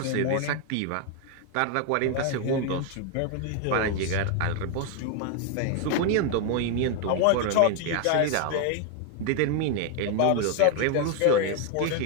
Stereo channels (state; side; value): different; both; correlation 0.01